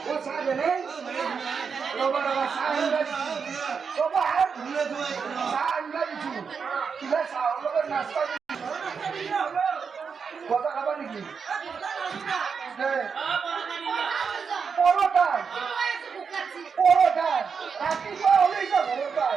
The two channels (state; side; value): quieter; left; 5.9 dB